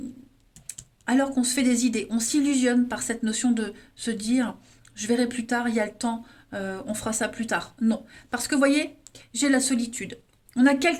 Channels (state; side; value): identical; both; correlation 1.00